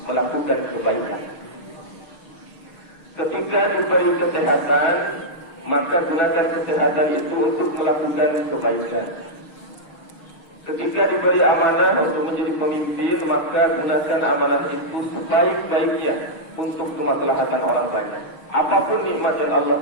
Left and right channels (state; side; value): late; right; 6.5 ms